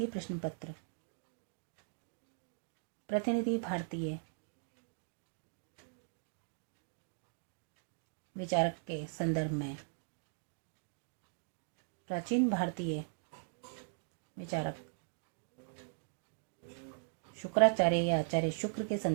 प्रश्न पत्र प्रतिनिधि भारतीय विचारक के संदर्भ में प्राचीन भारतीय विचारक शुक्राचार्य या आचार्य शुक्र के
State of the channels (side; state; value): left; silent; digital silence